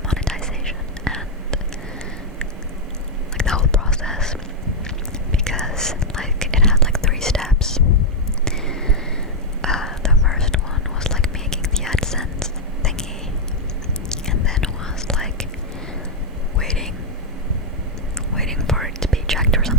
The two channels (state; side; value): normal; both; correlation -0.01